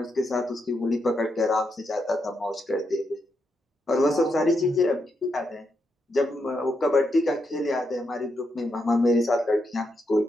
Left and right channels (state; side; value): normal; both; correlation 0.82